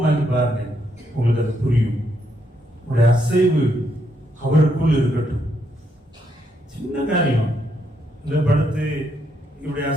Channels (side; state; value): both; normal; correlation 0.76